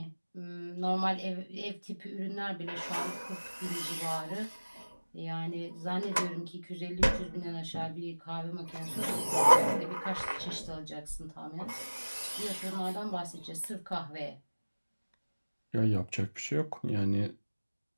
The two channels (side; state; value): both; inverted; correlation -1.00